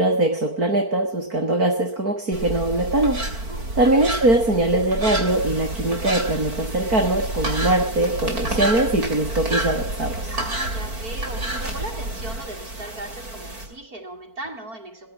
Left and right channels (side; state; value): left; late; 4.5 ms